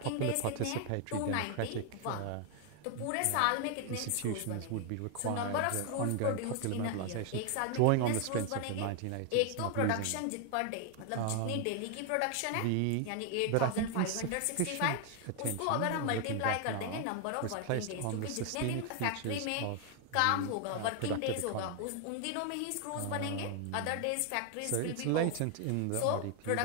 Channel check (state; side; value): different; both; correlation 0.00